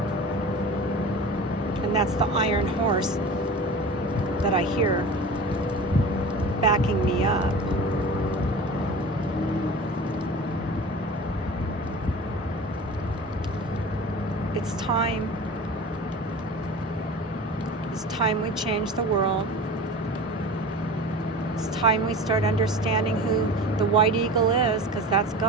And that's the Iron Horse that I hear backing me up. It's time. It's time we change the world. It's time we start understanding who the White Eagle is, because that's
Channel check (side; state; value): both; normal; correlation 0.35